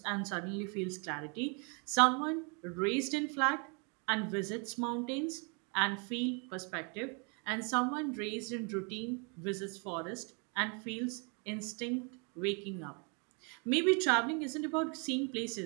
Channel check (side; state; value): left; quieter; 35.6 dB